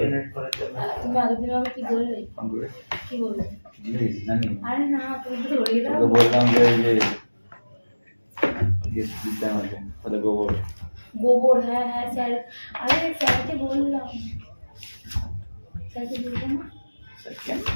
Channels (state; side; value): inverted; both; correlation -1.00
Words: তুমি আগের দিন আমাকে কি বললে কি বললে জানি আরে না তুমি তো ধরিয়ে দাও তো বললাম যে গেস্ট দিতাম আছে তাহলে গোবর গোবর হ্যাঁ হ্যাঁ স্যার আরে স্যারকে বললাম স্যারকে বললাম না স্যার কেন